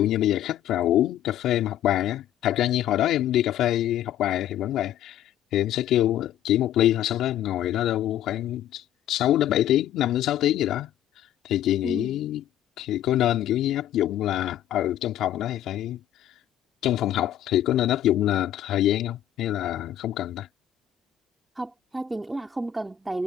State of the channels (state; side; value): quieter; right; 11.6 dB